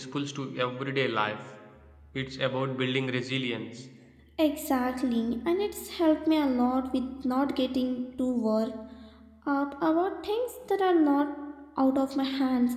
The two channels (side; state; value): both; identical; correlation 1.00